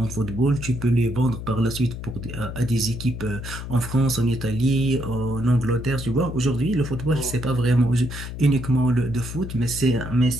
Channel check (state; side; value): noise; left; hum, 8 dB below the sound